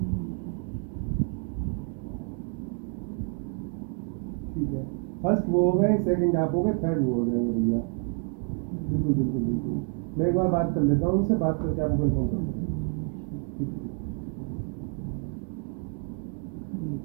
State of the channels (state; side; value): quieter; left; 39.7 dB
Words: ठीक है, फर्स्ट वो हो गए, सेकंड आप हो गए, थर्ड वो हो जाएंगे भैया। बिल्कुल बिल्कुल बिल्कुल, मैं एक बार बात कर लेता हूँ उनसे, बात करके आपको इन्फॉर्म करता हूँ। ठीक ठीक। हरे